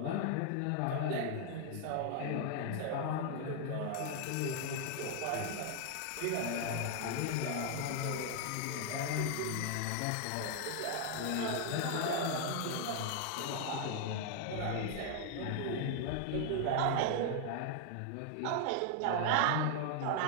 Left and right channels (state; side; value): different; both; correlation 0.00